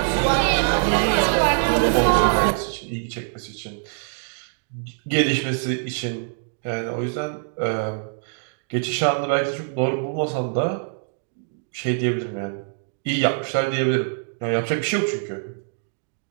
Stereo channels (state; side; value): silent; left; digital silence